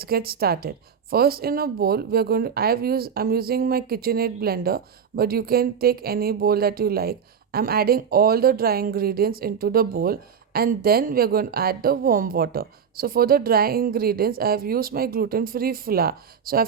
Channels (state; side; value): quieter; left; 7.1 dB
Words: get started. First, in a bowl we're going to I'm using my KitchenAid blender, but you can take any bowl that you like. I'm adding all the dry ingredients into the bowl, and then we're going to add the warm water. So for the dry ingredients, I have used my gluten-free flour. So